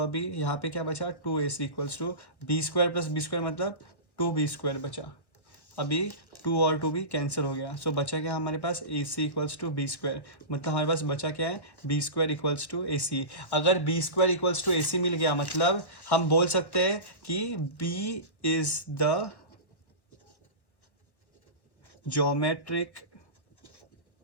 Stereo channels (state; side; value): late; right; 1.2 ms